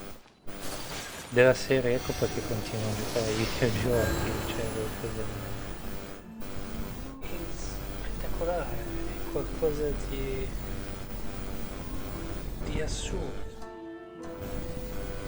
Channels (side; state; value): both; identical; correlation 1.00